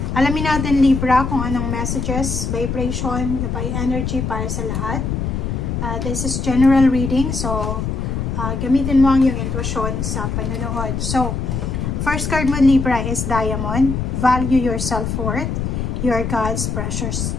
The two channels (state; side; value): noise; left; rumble, 2 dB below the sound